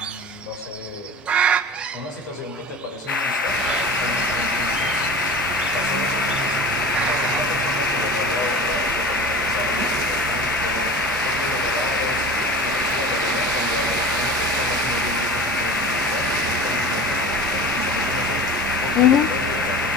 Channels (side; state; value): both; normal; correlation 0.36